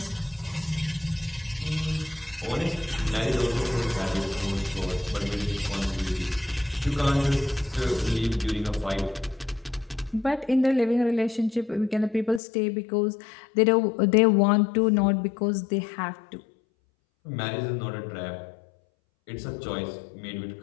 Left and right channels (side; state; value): right; drops out; at 12.4 s